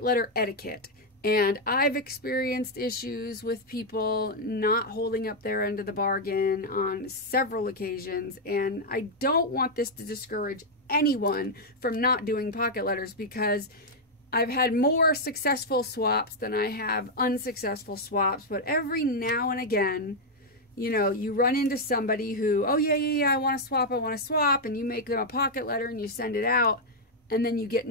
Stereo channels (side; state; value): both; normal; correlation -0.02